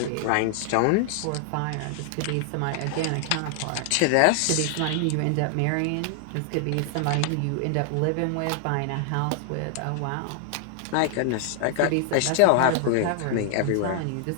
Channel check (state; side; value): different; both; correlation 0.00